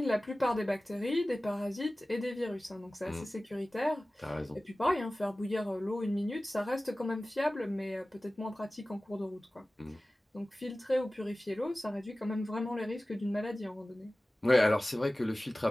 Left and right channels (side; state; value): both; normal; correlation 0.97